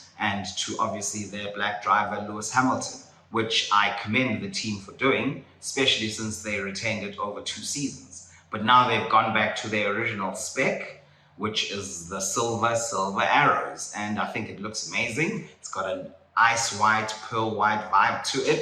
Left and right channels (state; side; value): identical; both; correlation 1.00